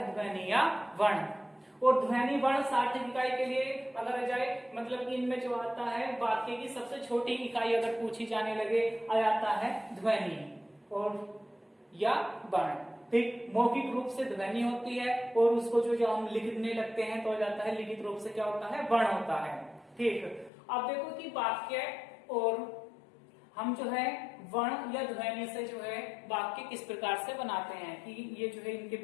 ध्वनि या वर्ण। और ध्वनि वर्ण सार्थक इकाई के लिए अगर आ जाए मतलब कि इनमें जो आता है वाक्य की सबसे छोटी इकाई अगर पूछी जाने लगे, आ जाता है ध्वनि और या वर्ण। ठीक, मौखिक रूप से ध्वनि होती है और उसको जो हम लिखने लगते हैं तो आ जाता है लिखित रूप से क्या होता है, वर्ण होता है। ठीक, अब देखो कि वाक्य और हम जो है वर्ण या ध्वनि से जो है वाक्य किस प्रकार से बनाते हैं कि ये जो है इनके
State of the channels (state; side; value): drops out; right; at 20.5 s